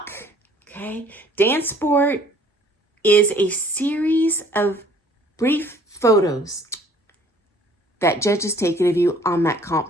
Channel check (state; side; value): normal; both; correlation 0.56